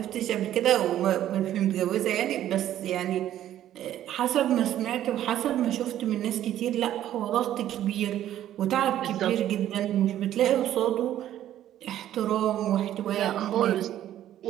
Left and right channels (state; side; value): quieter; left; 12.1 dB